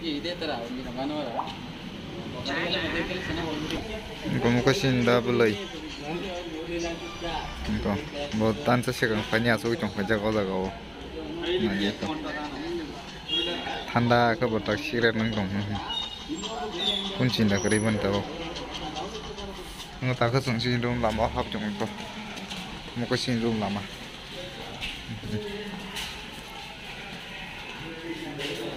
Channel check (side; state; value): both; identical; correlation 1.00